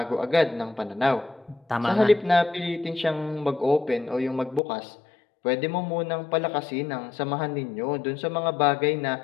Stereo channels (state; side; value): drops out; right; at 4.6 s